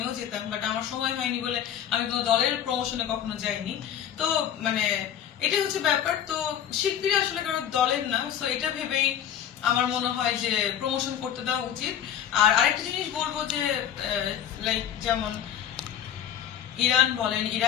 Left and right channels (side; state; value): right; quieter; 9.8 dB